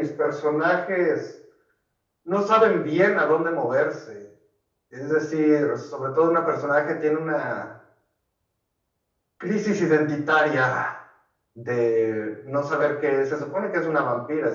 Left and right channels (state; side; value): identical; both; correlation 1.00